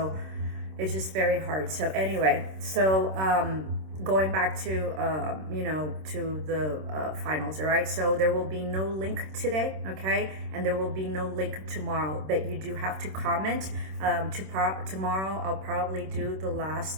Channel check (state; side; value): late; left; 26 ms